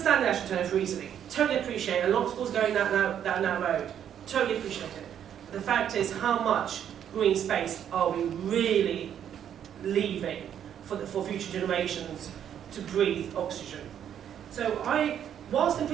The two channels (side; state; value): left; quieter; 9.5 dB